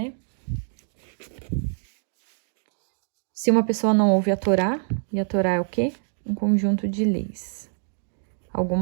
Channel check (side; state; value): left; silent; digital silence